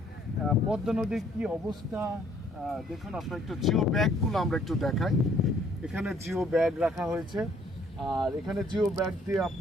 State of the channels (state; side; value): normal; both; correlation 0.63